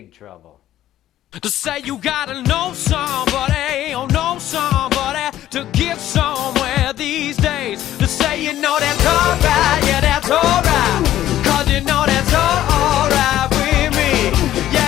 trouble. To say you gotta know somebody, or know somebody to get somewhere these days. To say you know that's alright, yeah that's alright. Cause you know that's alright with me.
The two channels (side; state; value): right; quieter; 13.0 dB